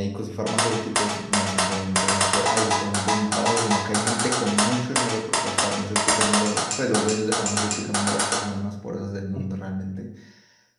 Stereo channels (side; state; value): both; identical; correlation 1.00